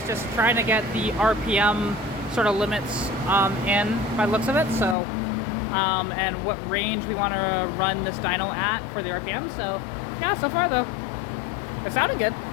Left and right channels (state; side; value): drops out; right; at 5.0 s